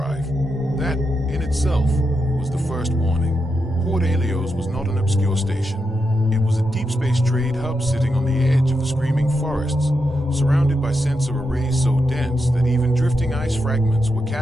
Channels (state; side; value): normal; both; correlation 0.85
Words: That, in itself, was the first warning. Port Helios was not an obscure station. It was a deep space trade hub sitting on the edge of the screaming forests, surrounded by sensor arrays so dense that even drifting ice fragments were